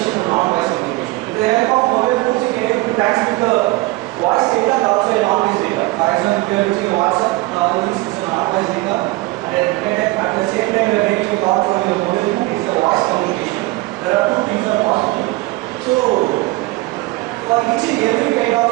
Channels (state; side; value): quieter; left; 21.0 dB